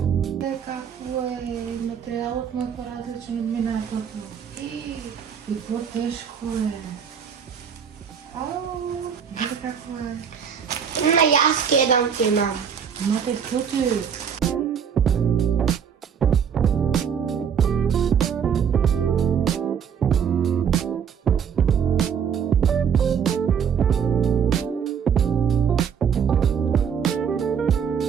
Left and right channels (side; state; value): left; quieter; 7.4 dB